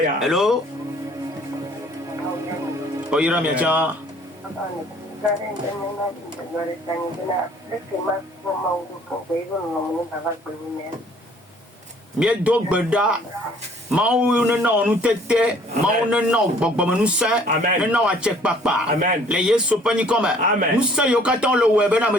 Hello? Oyira mi aja. Mieux d'Ogbeda, Maou ne non, nous tété, Maou ne non, Bogom nous saint, ne non à check papa. Les yes sopani comme nous saint yokaton le web, na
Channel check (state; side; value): normal; both; correlation 0.57